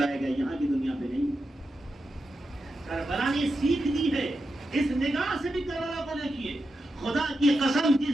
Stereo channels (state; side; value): normal; both; correlation 0.88